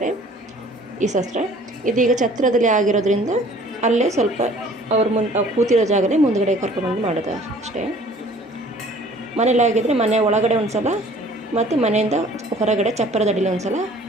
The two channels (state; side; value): normal; both; correlation 0.52